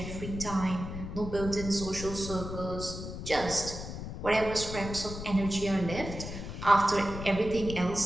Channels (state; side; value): noise; left; rumble, 8 dB below the sound